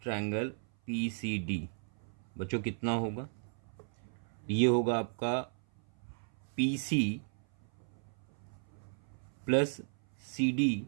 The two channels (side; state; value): left; silent; 54 dB below the other